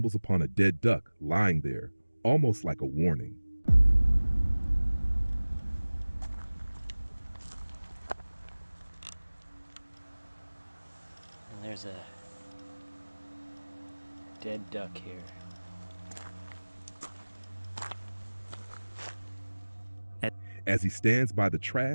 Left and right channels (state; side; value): inverted; both; correlation -1.00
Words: upon a dead duck lying there, almost like a warning. And there's a dead duck here. As he stands by the